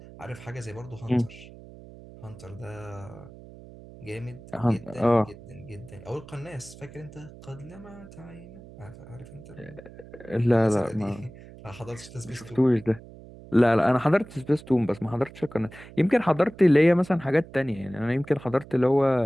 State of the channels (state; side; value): noise; right; hum, 18 dB below the sound